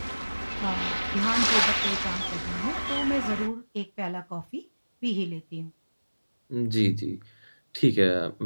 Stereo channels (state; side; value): inverted; both; correlation -1.00